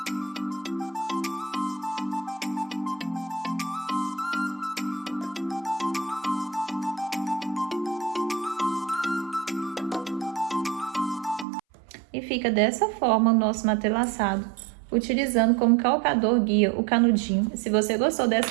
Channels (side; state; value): left; drops out; at 11.5 s